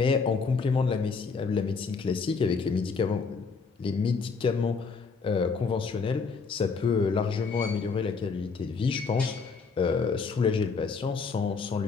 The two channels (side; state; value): right; quieter; 4.9 dB